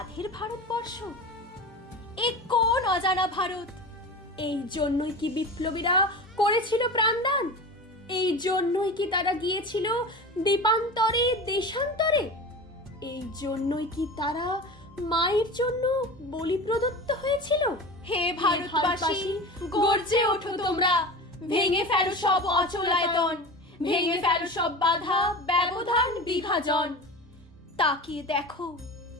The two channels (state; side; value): normal; both; correlation 0.31